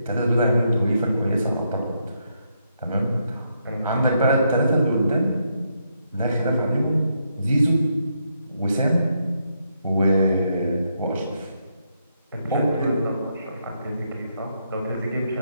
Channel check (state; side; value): inverted; both; correlation -0.79